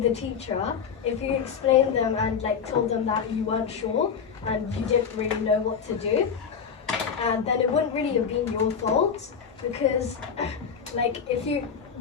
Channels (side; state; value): right; quieter; 6.7 dB